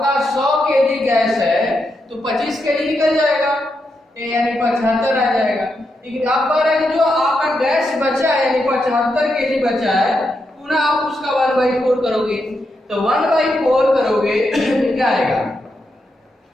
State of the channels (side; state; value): both; normal; correlation 0.84